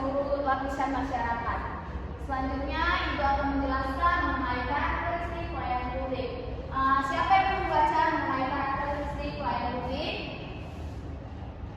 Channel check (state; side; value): identical; both; correlation 1.00